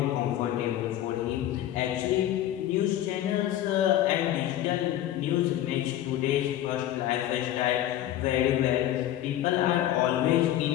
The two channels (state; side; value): quieter; right; 12.6 dB